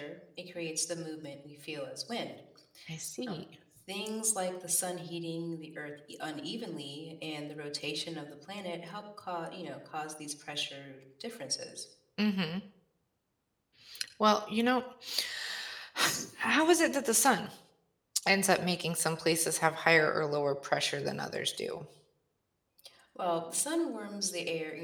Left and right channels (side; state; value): both; identical; correlation 1.00